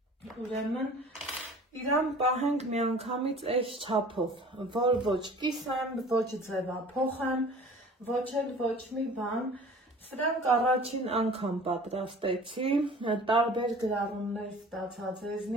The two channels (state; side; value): normal; both; correlation 0.45